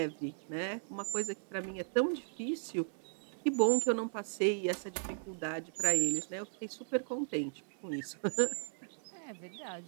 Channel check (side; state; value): left; silent; digital silence